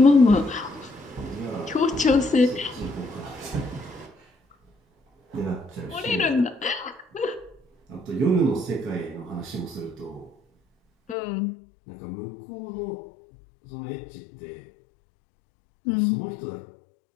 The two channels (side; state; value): right; drops out; at 11.2 s